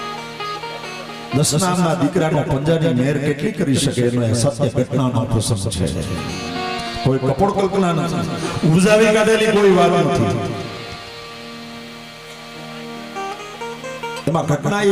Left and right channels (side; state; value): both; identical; correlation 1.00